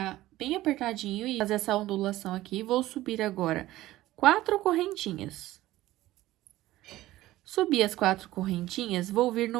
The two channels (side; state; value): left; quieter; 16.2 dB